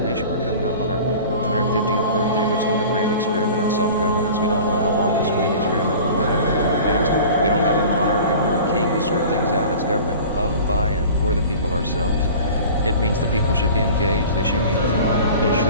We're coming up on our 250th birthday. We're still the grand experiment in self-governance. We don't know how long this grand experiment will last. We don't have a monarch. We don't have a king to sort things out. It's government of, by, and for the people ourselves. It means the people should be engaged. They should be informed. They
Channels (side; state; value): both; inverted; correlation -0.41